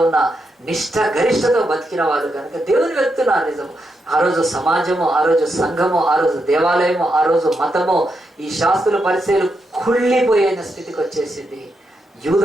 ఉన్న నిష్ఠ గరిష్టతో బతికిన వాళ్ళు కనుక దేవుని వెళ్తున్నారు. నిజము ఆ రోజు సమాజము, ఆ రోజు సంఘము, ఆ రోజు దేవాలయము, ఆ రోజు మతము, ఈ శాస్త్రుల పరిచయాలు కుళ్ళిపోయిన స్థితికి వచ్చేసింది.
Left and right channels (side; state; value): both; normal; correlation 0.83